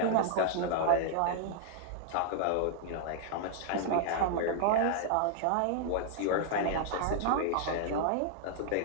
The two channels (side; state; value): both; different; correlation -0.01